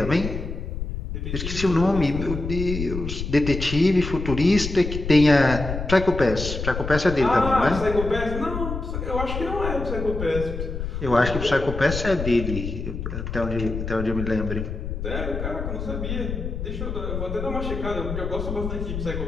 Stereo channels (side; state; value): left; noise; rumble, 5 dB below the sound